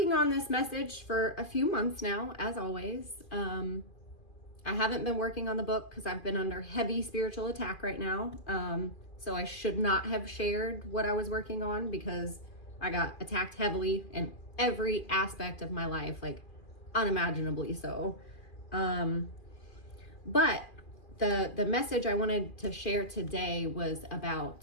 on this message for a few months now, as always. I haven't been working on the book because I've been under heavy spiritual attack right now. So I should not have shared what I was working on because I got attacked heavily in every aspect of my life, like unimaginably so. But the message I wanted to share today was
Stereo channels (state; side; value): late; right; 2.5 ms